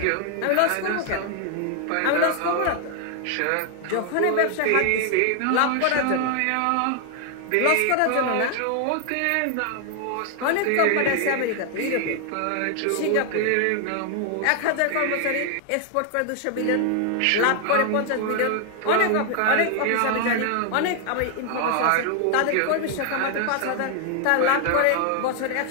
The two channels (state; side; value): different; both; correlation 0.00